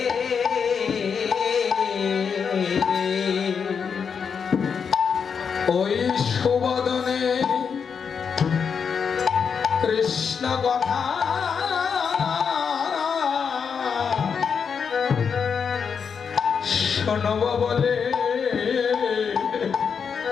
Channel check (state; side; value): quieter; right; 6.4 dB